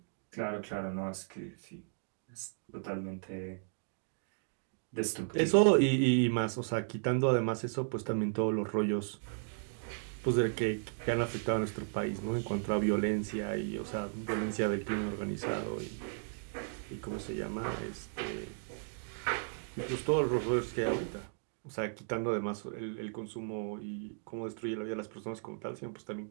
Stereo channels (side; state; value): left; silent; digital silence